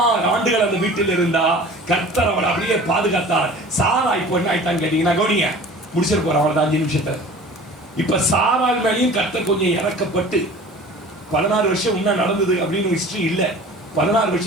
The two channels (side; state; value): both; normal; correlation 0.43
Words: ஆண்டுகள் அந்த வீட்டில் இருந்தா, கர்த்தர் அவளை அப்படியே பாதுகாத்தார். சாரா இப்போ என்ன ஆயிட்டான்னு கேட்டீங்கன்னா, கவனிங்க, முடிச்சிட்டு போறேன் அவ்வளவுதான் 5 நிமிஷத்துல. இப்ப சாராள் மேலேயும் கர்த்தர் கொஞ்சம் இறக்கப்பட்டு 16 வருஷம் முன்ன நடந்தது அப்படின்னு ஹிஸ்டரி இல்ல. 16